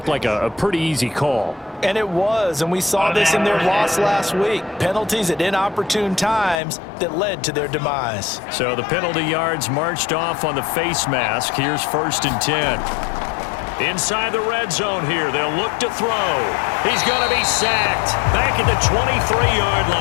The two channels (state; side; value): drops out; right; at 6.6 s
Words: like a pretty easy call. And it was, and we saw this in their loss last week. Penalties at inopportune times that led to their demise. So the penalty yards marched off on the face mask. Here's 1st and 10. Inside the red zone here, they'll look to throw. He's going to be sacked back at the 23-yard